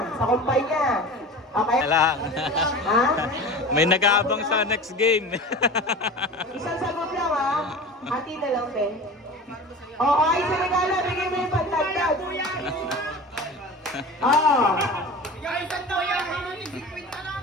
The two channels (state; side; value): normal; both; correlation 0.34